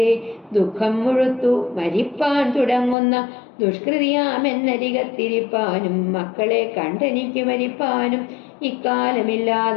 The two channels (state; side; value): drops out; right; at 3.0 s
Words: ദുഃഖം മുഴുത്തു മരിപ്പാൻ തുടങ്ങുന്ന ദുഷ്കൃതിയാമെന്നരികത്തിരിപ്പാനും മക്കളെ കണ്ടെനിക്ക് മരിപ്പാനും